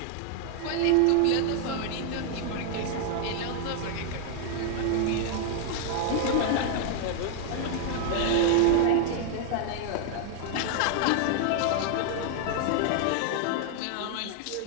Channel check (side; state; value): both; different; correlation 0.00